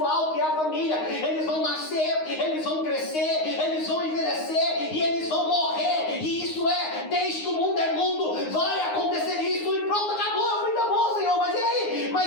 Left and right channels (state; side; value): late; right; 9.6 ms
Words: que é a família. Eles vão nascer, eles vão crescer, eles vão envelhecer e eles vão morrer. E isso é, desde que o mundo é mundo, vai acontecer isso e pronto, acabou. Eu falei, tá bom, Senhor, mas e aí?